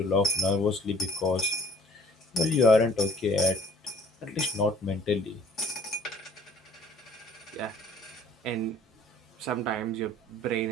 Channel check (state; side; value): normal; both; correlation 0.55